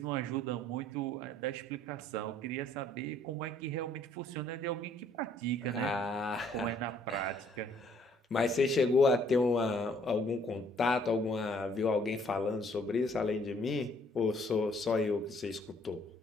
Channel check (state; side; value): normal; both; correlation 0.63